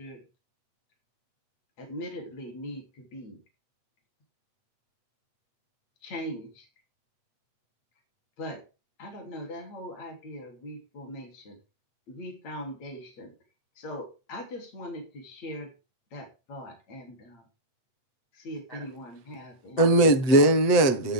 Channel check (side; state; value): right; late; 7.9 ms